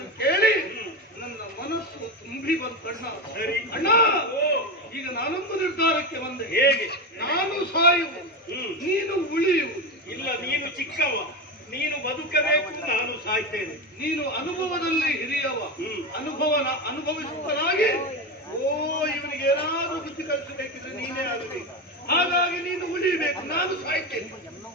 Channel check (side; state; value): both; normal; correlation 0.17